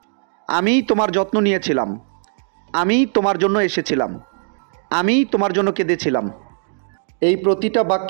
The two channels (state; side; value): silent; left; digital silence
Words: আমি তোমার যত্ন নিয়েছিলাম। আমি তোমার জন্য এসেছিলাম। আমি তোমার জন্য কেঁদেছিলাম। এই প্রতিটা